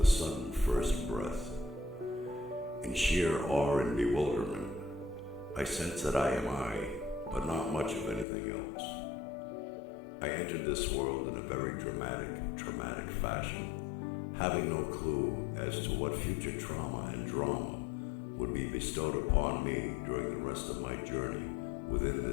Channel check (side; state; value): right; drops out; at 8.2 s